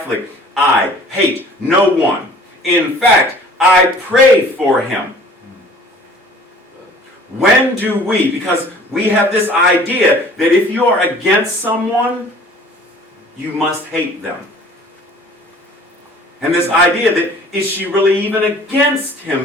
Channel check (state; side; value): normal; both; correlation 0.50